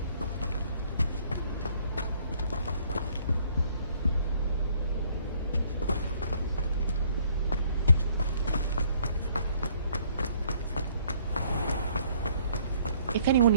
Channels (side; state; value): both; inverted; correlation -0.63